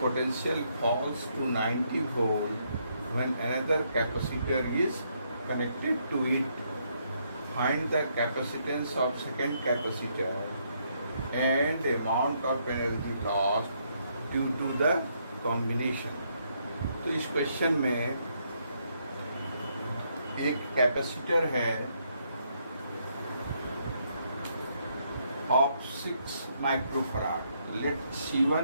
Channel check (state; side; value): inverted; both; correlation -0.74